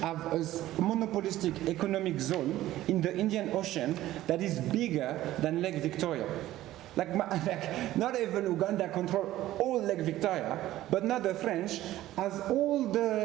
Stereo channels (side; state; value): left; quieter; 14.8 dB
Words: have a monopolistic economic zone in the Indian Ocean that is bigger than Lake Victoria? Like not even Uganda control all Lake Victoria, but now the French, as